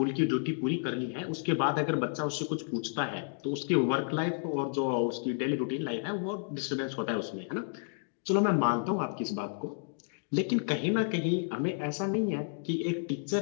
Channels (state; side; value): silent; right; digital silence